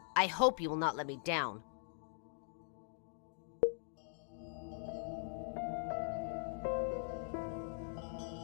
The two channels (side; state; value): right; silent; digital silence